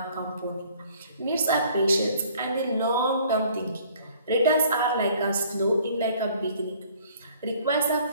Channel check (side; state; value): both; inverted; correlation -0.56